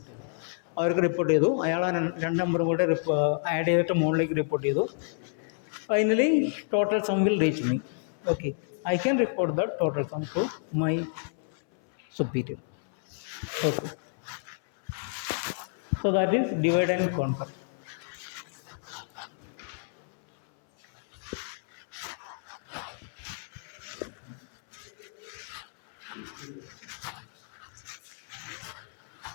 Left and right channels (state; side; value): silent; right; 58 dB below the other